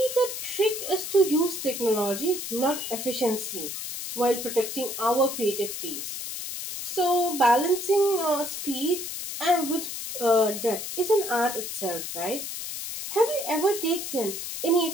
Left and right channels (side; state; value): left; noise; hiss, 6 dB below the sound